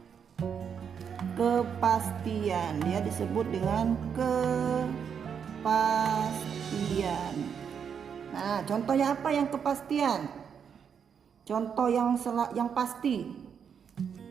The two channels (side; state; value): left; quieter; 7.3 dB